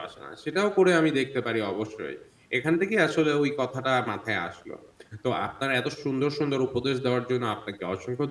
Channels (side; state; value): both; identical; correlation 1.00